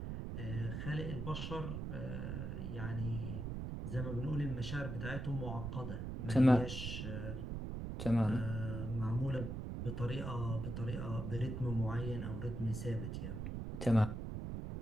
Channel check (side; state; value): right; noise; rumble, 4 dB below the sound